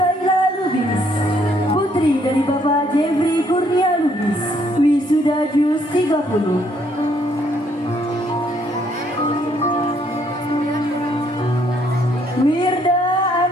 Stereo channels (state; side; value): normal; both; correlation 0.68